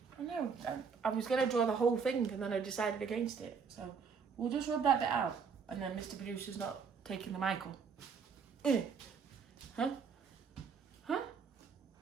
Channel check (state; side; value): quieter; left; 5.9 dB